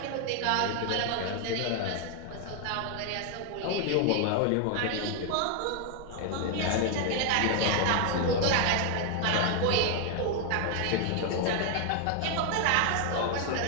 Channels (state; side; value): different; both; correlation 0.00